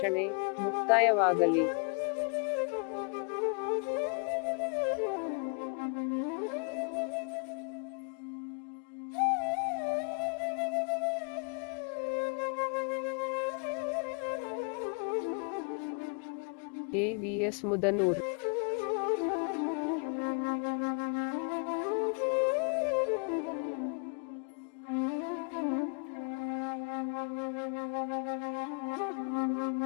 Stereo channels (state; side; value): quieter; right; 38.6 dB